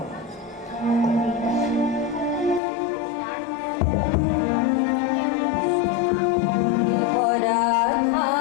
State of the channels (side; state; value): right; drops out; at 2.6 s